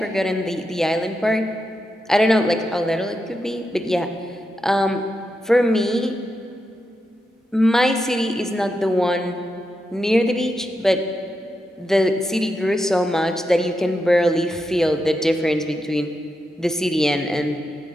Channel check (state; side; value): normal; both; correlation 0.86